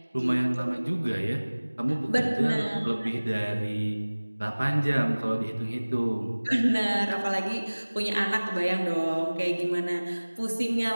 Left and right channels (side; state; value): both; inverted; correlation -1.00